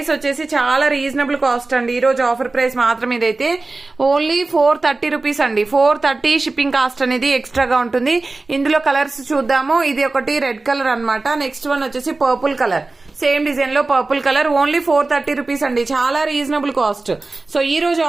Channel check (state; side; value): quieter; left; 3.4 dB